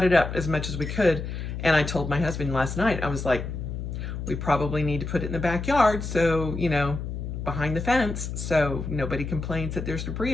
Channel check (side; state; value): left; noise; hum, 5 dB below the sound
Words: it up as much as we could. And I told my husband last night, I was like, we probably need to put it in the backyard, so, you know, behind the fence, so nobody complains that there's debris